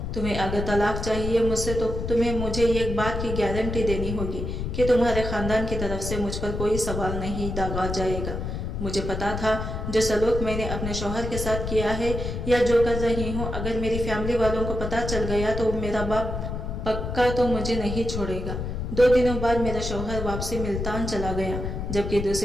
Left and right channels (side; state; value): left; noise; rumble, 4 dB below the sound